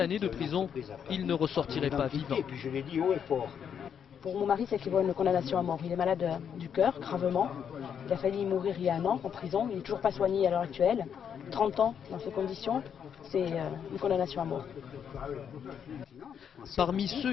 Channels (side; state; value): right; quieter; 7.9 dB